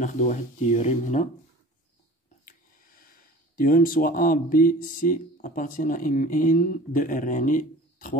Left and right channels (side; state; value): both; normal; correlation 0.42